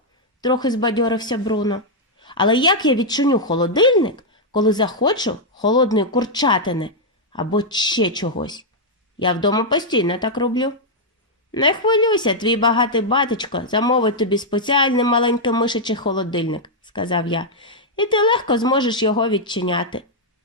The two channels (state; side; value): normal; both; correlation -0.04